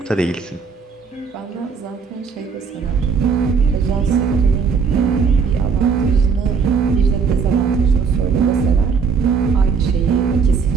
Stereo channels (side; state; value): left; quieter; 5.7 dB